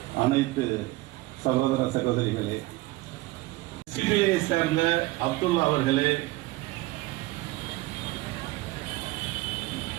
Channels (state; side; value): quieter; left; 19.6 dB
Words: அனைத்து சகோதர சகோதரிகளே, சிபிஐயை சேர்ந்த அப்துல்லா அவர்களே,